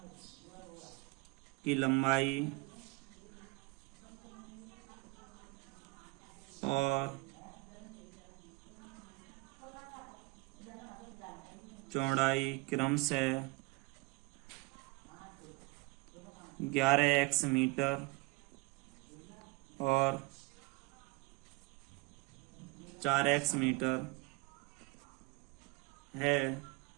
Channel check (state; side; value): quieter; left; 24.3 dB